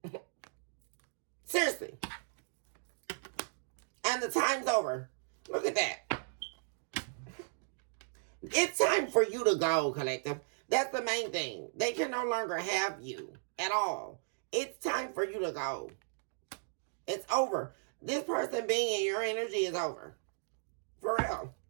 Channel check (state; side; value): silent; left; digital silence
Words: Seriously. And the time's over. Look at that. It's time for you to go, collective. That's the main thing. They can no longer have you at all. It's time for you to go. It's over. This person being in your energy is over. For real.